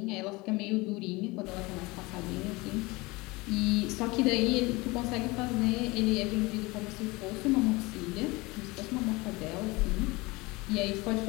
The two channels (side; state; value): right; quieter; 23.4 dB